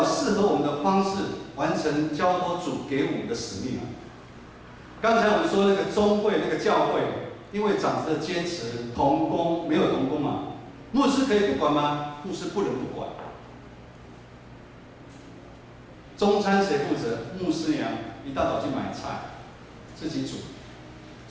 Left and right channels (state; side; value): identical; both; correlation 1.00